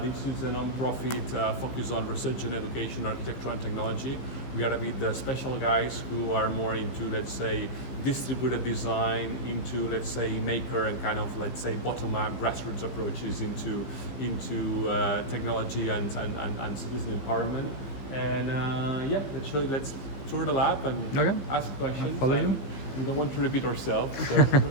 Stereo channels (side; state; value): right; late; 15 ms